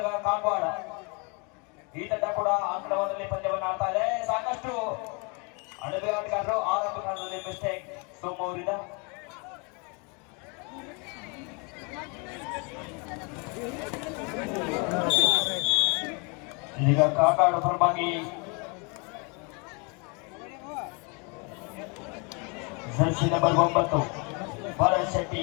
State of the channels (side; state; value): right; quieter; 32.7 dB